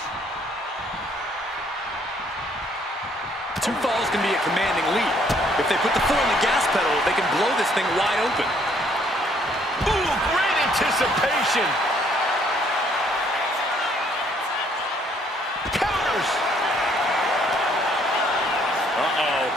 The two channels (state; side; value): normal; both; correlation 0.65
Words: 2 falls can be a commanding lead. If they put the foot on the gas pedal, they can blow this thing wide open. Ooh, great anticipation. Counters. Uh-oh.